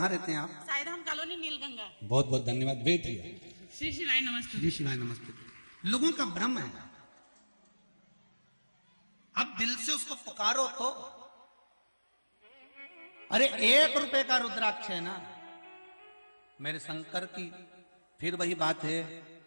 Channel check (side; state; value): both; inverted; correlation -1.00